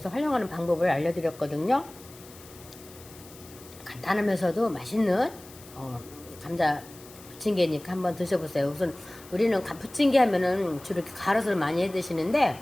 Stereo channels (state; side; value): noise; left; hiss, 20 dB below the sound